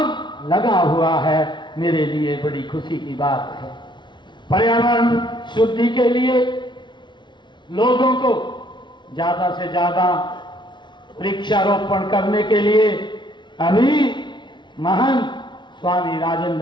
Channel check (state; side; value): late; right; 0.22 ms